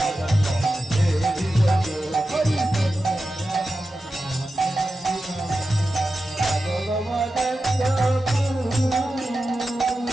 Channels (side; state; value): both; normal; correlation 0.92